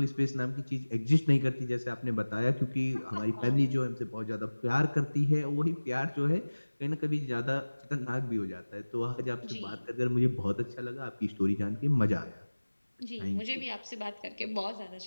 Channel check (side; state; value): both; inverted; correlation -1.00